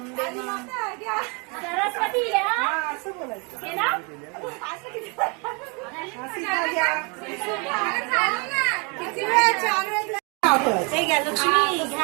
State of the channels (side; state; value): left; quieter; 32.4 dB